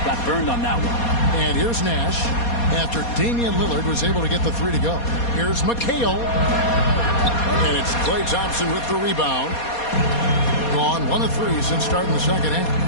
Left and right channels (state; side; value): late; right; 4.2 ms